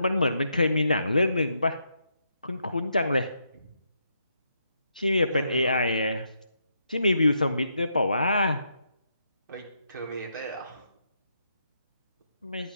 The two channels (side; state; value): both; inverted; correlation -0.79